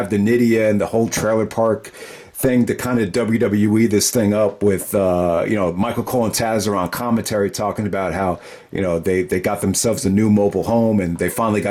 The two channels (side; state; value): both; identical; correlation 1.00